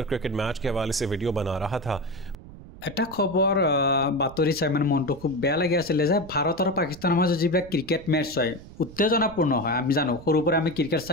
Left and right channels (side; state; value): right; noise; rumble, 17 dB below the sound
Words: क्रिकेट मैच के हवाले से वीडियो बना रहा था। এটা খবৰ বাতৰি চাই মানে মনটো খুব বেয়া লাগি আছিল যে ভাৰত আৰু পাকিস্তানৰ মাজত যিবিলাক ক্ৰিকেট মেচ হয় উত্তেজনাপূৰ্ণ হয়। আমি জানো সৰুৰ পৰা আমি ক্ৰিকেট